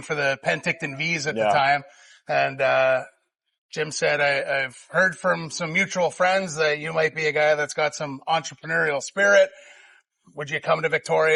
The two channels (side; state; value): both; identical; correlation 1.00